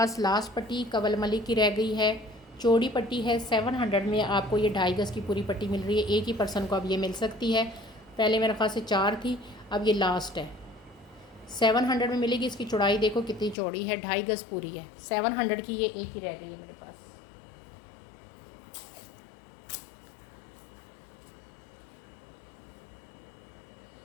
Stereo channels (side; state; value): right; drops out; at 13.6 s